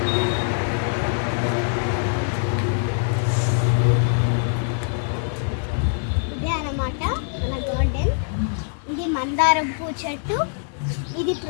ఇదే అన్నమాట మన గార్డెన్. ఇది మందారం పూ చెట్టు, ఇది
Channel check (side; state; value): right; silent; 63 dB below the other